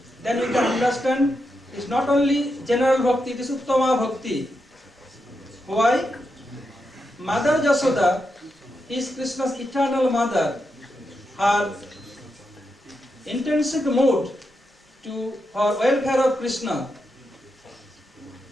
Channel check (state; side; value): normal; both; correlation 0.85